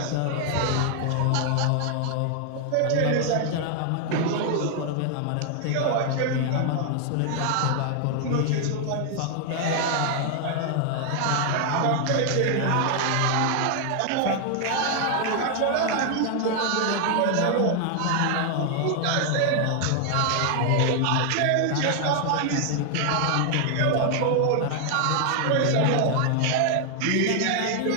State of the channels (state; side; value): different; both; correlation 0.00